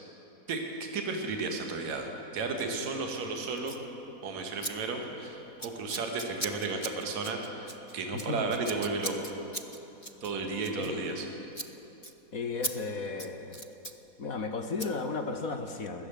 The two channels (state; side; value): late; right; 4.1 ms